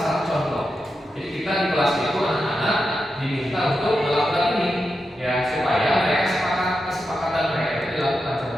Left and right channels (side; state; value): both; normal; correlation 0.88